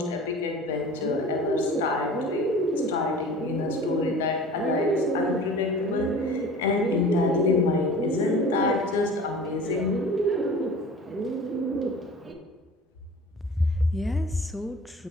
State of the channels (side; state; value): both; normal; correlation 0.41